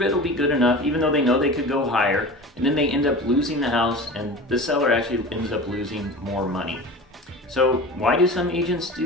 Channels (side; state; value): both; normal; correlation 0.34